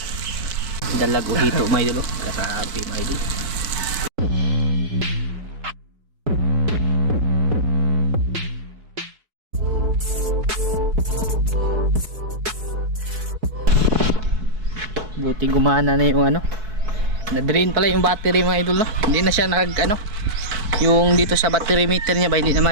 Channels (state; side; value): late; left; 4.6 ms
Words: Dalag o hito may idol. Grabe may idol. Buti gumana na yung ano, na-drain pala yung battery mga idol, no? Hindi na siya yung dito sa battery meter niya ba, hindi na